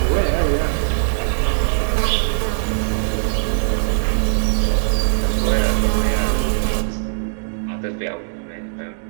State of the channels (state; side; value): silent; left; digital silence